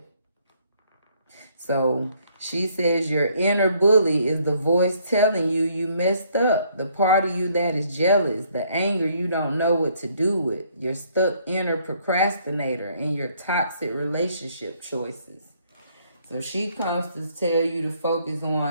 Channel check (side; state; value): both; inverted; correlation -0.66